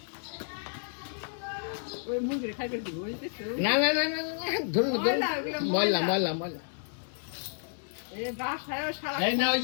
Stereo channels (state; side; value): silent; right; digital silence